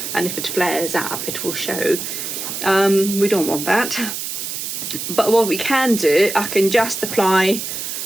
and if it flares up it will show. We don't want that, but what we can do, I can just apply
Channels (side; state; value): right; noise; hiss, 5 dB below the sound